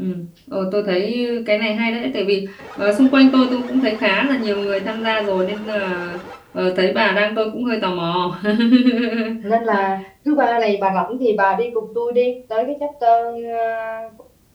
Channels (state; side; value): identical; both; correlation 1.00